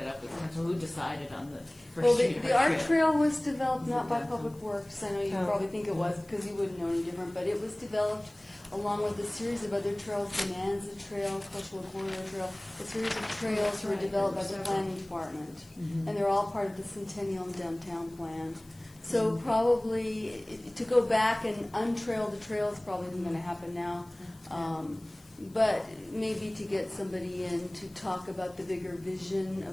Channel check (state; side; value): noise; left; hiss, 26 dB below the sound